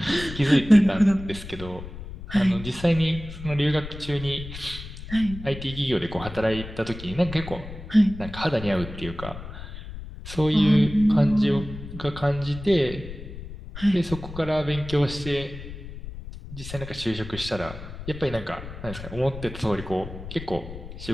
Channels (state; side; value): noise; left; rumble, 12 dB below the sound